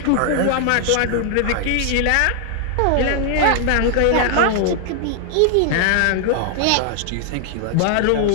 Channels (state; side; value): different; both; correlation 0.00